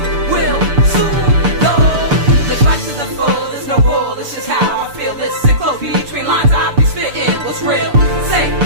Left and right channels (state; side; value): late; left; 6.9 ms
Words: will soon go. Let's rise to the full, there's no rule, it's just how I feel. Listen close between lines, I be spitting what's real. Say